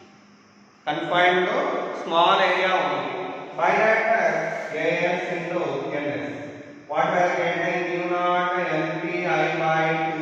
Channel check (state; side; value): identical; both; correlation 1.00